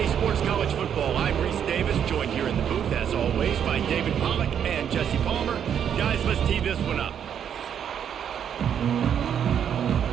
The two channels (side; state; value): left; quieter; 8.7 dB